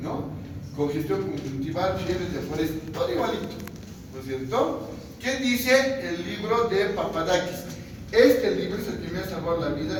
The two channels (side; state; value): both; identical; correlation 1.00